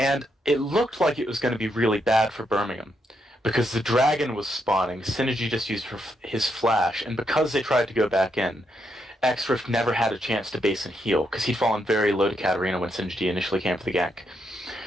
it looked like it was going to be really bad for Birmingham, because the Dragon was spawning, Synergy just used his flash, and because they tried to go back in, X-Rift never had a chance to base and heal, because he'd fallen very low to Katarina when Synergy initially came for the gank.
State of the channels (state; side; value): normal; both; correlation 0.79